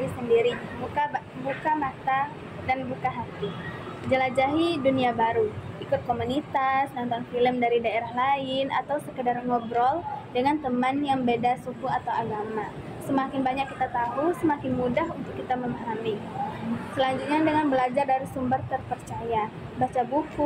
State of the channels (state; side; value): identical; both; correlation 1.00